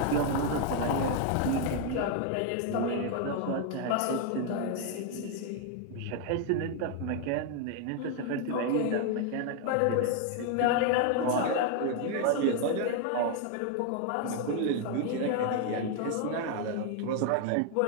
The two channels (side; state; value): both; different; correlation 0.01